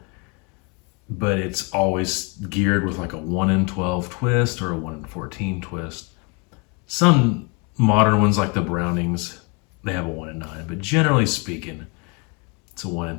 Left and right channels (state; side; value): quieter; right; 32.3 dB